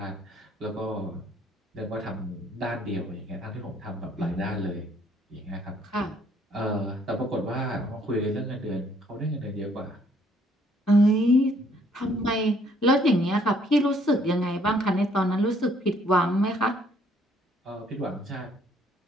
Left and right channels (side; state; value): both; normal; correlation 0.64